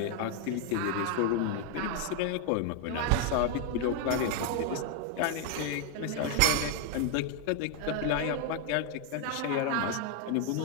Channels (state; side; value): different; both; correlation 0.01